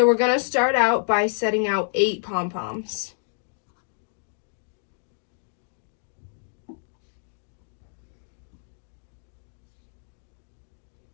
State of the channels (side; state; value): right; silent; digital silence